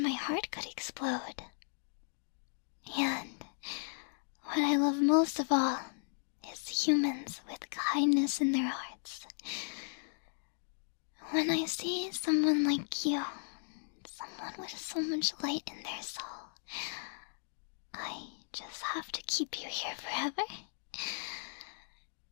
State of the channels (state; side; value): silent; right; digital silence